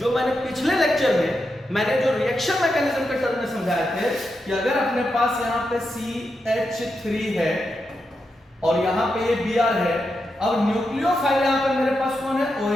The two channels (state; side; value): normal; both; correlation 0.86